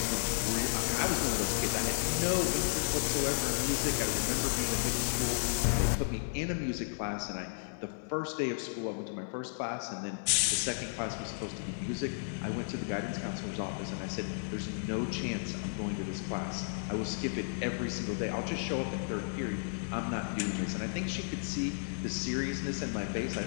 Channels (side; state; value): right; silent; 55 dB below the other